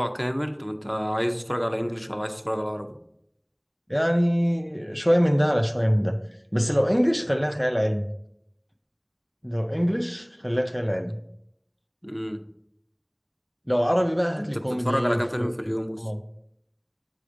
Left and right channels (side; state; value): both; identical; correlation 1.00